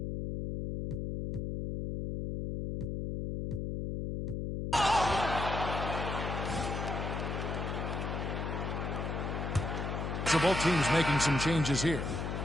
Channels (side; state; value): left; noise; hum, 3 dB below the sound